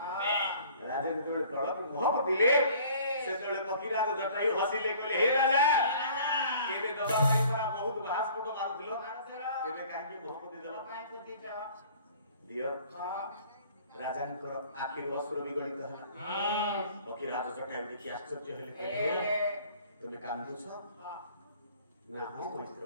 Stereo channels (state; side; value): inverted; both; correlation -0.52